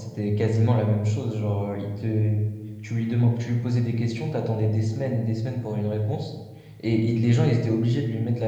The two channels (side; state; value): both; identical; correlation 1.00